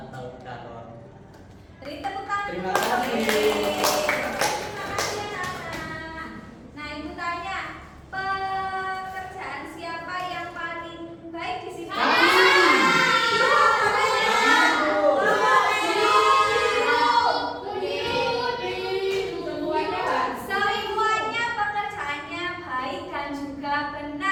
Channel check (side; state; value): both; identical; correlation 1.00